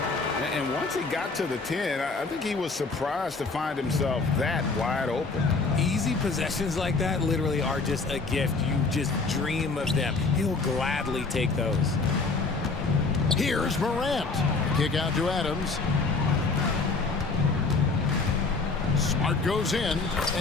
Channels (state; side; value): quieter; right; 4.0 dB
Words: And once he got to the 10, I think he was surprised to find himself that wide open. Easy possessions like that literally are just a gift. You just dream of them. He'll gladly take those. Here's Morant. Kick out to Adams. Smart goes in,